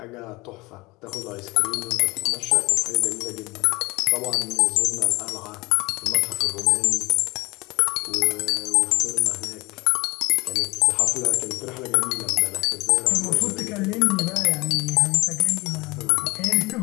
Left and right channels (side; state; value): right; quieter; 22.7 dB